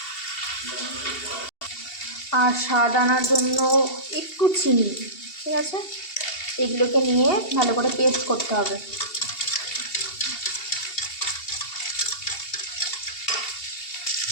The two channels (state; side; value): late; right; 2.7 ms